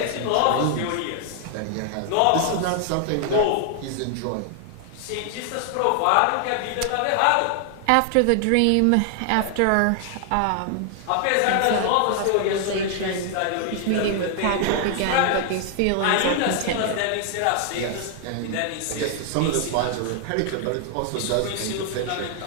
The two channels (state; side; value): different; both; correlation 0.00